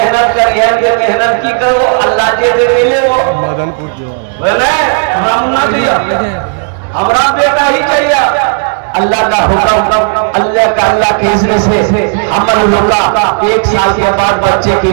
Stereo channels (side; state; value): left; silent; 56 dB below the other